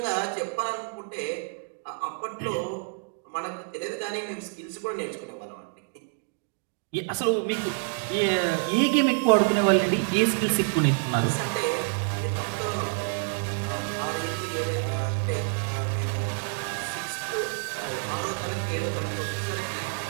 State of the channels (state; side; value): silent; left; 59 dB below the other